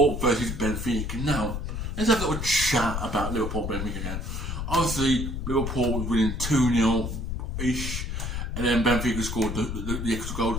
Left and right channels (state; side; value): noise; left; rumble, 3 dB below the sound